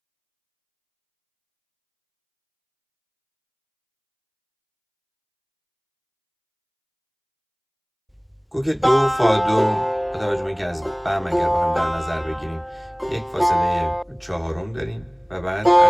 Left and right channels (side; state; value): both; identical; correlation 1.00